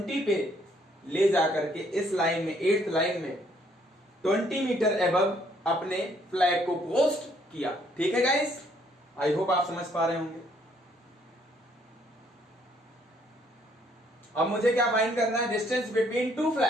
पे ले जाकर के इस लाइन में, 8th लाइन में 20 मीटर एबव अपने फ्लैग को पोस्ट किया। ठीक है गाइस। आई होप आप समझ पा रहे होंगे। अब मुझे क्या फाइंड करना है, डिस्टेंस बिटवीन टू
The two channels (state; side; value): normal; both; correlation 0.66